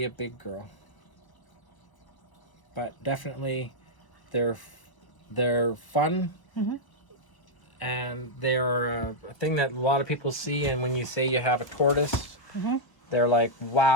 a big girl. But definitely, they're fun, and they are a thing that a lot of people see. And when you say you have a tortoise, they're like,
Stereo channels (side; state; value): right; late; 1.0 ms